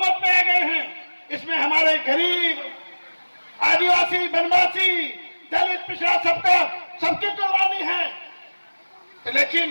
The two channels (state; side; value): inverted; both; correlation -1.00